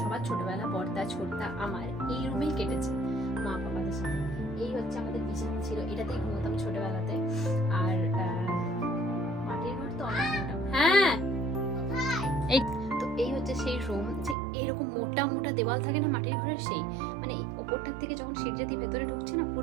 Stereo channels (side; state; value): left; drops out; at 14.4 s